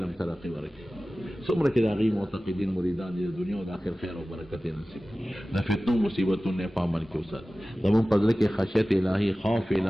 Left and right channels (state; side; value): normal; both; correlation 0.97